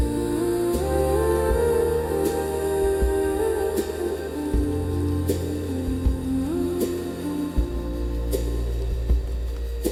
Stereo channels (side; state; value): both; identical; correlation 1.00